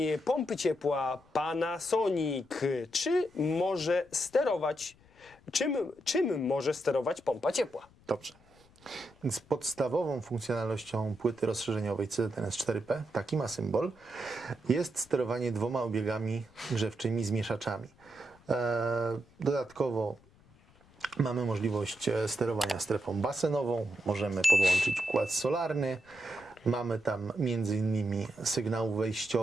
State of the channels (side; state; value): left; noise; rumble, 28 dB below the sound